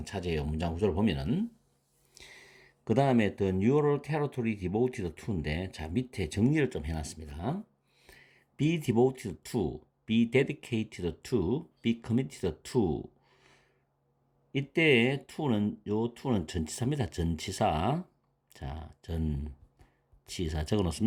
차지해요. 문장 구조를 보면은. 그 다음에 the neural territory devoted to인데 자 밑에 정리를 좀 해놨습니다. be devoted to, be dedicated to, be committed to 이때 to는 요 to는 전치사입니다. 전치사. 자, 전치사 적어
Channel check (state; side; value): identical; both; correlation 1.00